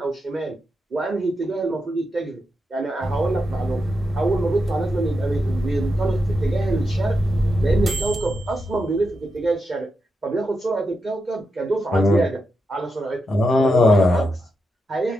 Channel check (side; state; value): both; normal; correlation 0.86